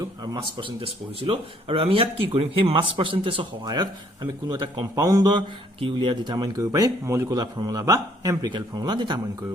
আৰু মাস পাৰ্চেন্টেজ পঢ়িছিলো আৰু আমি ইয়াত কি কৰিম সেই মাস পাৰ্চেন্টেজৰ সহায়ত আমি কোনো এটা কম্পাউণ্ডৰ কি উলিয়া ডিটাৰমাইন কৰিব পাৰিম মলিকুলাৰ ফৰ্মুলা বা এম্পিৰিকেল ফৰ্মুলা ডিটাৰমাইন কৰিব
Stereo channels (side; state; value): both; normal; correlation 0.64